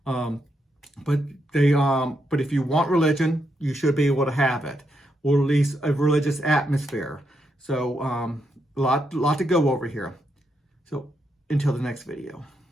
But if you want religion, you should be able to have it, or at least a religious atmosphere. So a lot to go over here. So until the next video.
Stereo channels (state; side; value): normal; both; correlation 0.81